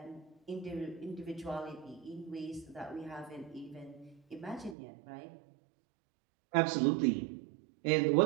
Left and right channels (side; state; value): left; drops out; at 4.8 s